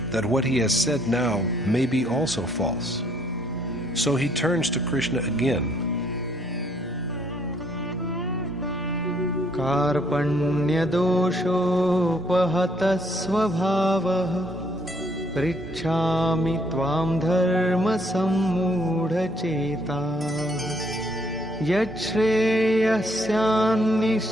that what he has said now may be also false. So he turns to Krishna again. कार्पण्यदोषोपहतः स्वभावः पृच्छामि त्वां धर्मसम्मूढचेताः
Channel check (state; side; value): normal; both; correlation 0.67